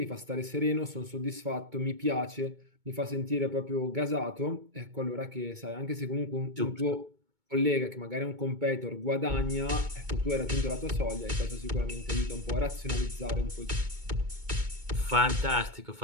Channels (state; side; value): late; left; 2.2 ms